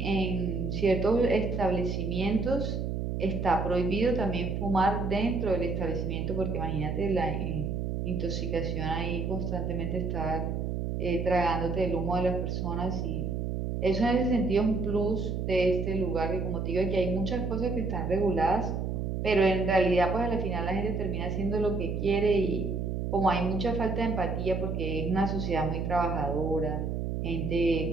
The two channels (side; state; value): right; noise; hum, 2 dB below the sound